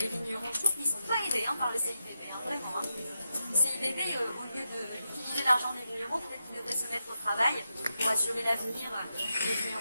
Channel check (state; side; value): inverted; both; correlation -0.88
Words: vignerons. Je trouve qu'ils ne sont pas aidés par le CIVB, vraiment. Le CIVB, au lieu d'utiliser l'argent des vignerons, peut-être qu'ils devraient se mettre au travail pour assurer l'avenir des